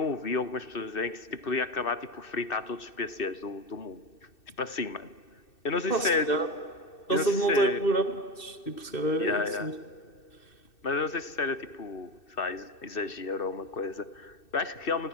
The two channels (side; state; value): right; late; 2.6 ms